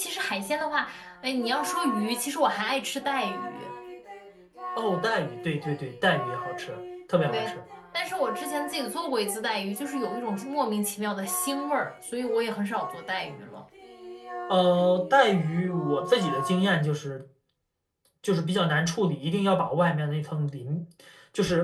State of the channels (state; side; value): identical; both; correlation 1.00